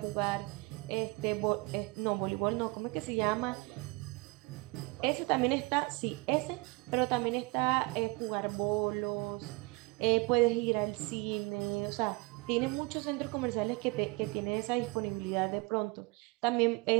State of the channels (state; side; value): quieter; left; 26.1 dB